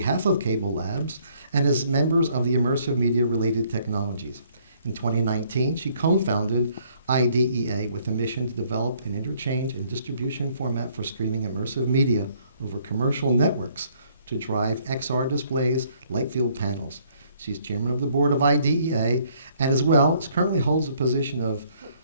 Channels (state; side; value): inverted; both; correlation -0.65